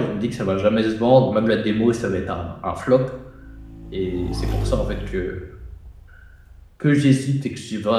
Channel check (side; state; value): both; identical; correlation 1.00